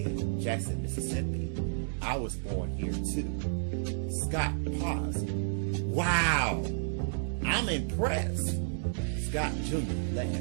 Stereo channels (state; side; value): silent; left; digital silence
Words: Jackson, Mississippi. I was born here too. Scott paused. Wow! I'm impressed. Scott Jr.